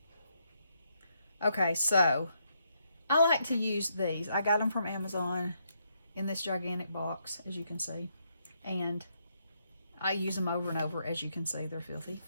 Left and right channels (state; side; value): inverted; both; correlation -0.77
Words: Okay, so I like to use these. I got them from Amazon in this gigantic box, as you can see. And I use them over and over, as you can see. They're filthy.